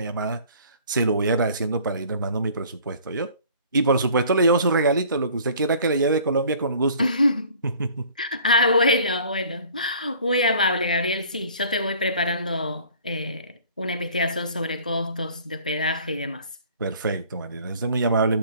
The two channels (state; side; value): inverted; both; correlation -0.51